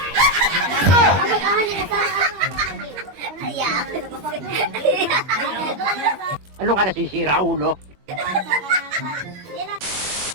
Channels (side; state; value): left; late; 21 ms